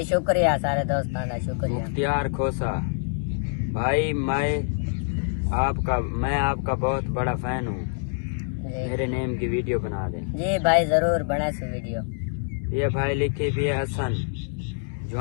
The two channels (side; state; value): right; silent; digital silence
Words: शुक्रिया सारे दोस्तों का शुक्रिया। मुख्तियार खोसा भाई मैं आपका बहुत बड़ा फैन हूँ, मेरे नेम की वीडियो बना दे। जी भाई जरूर बना सी वीडियो। ये भाई लिखी भी हसन